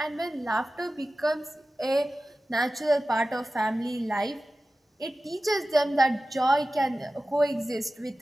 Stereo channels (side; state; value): both; normal; correlation 0.95